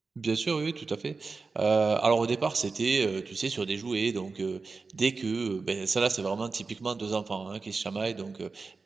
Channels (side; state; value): left; quieter; 4.3 dB